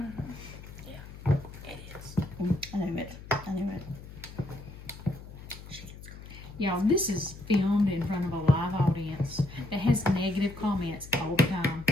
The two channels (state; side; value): noise; left; hum, 15 dB below the sound